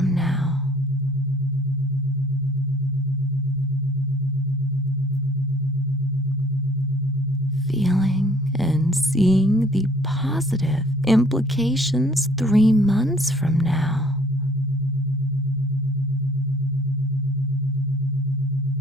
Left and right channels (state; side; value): normal; both; correlation 0.57